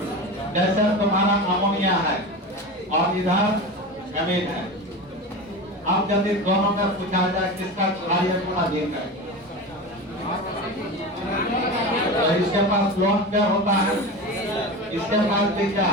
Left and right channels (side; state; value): both; normal; correlation 0.27